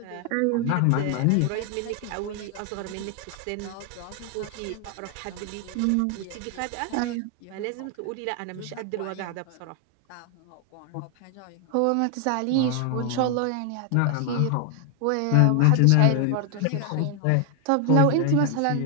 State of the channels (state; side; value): different; both; correlation 0.00